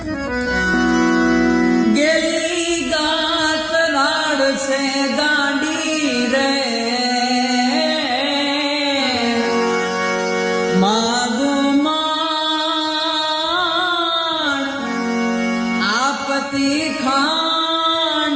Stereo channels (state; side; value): identical; both; correlation 1.00